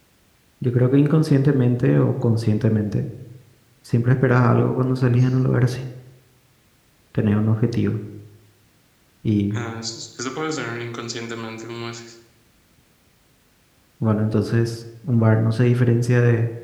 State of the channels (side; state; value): both; identical; correlation 1.00